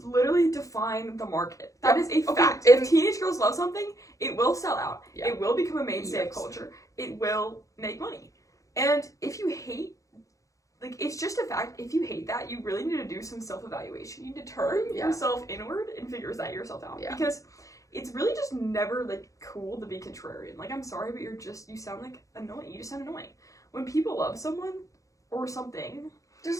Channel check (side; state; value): right; late; 0.16 ms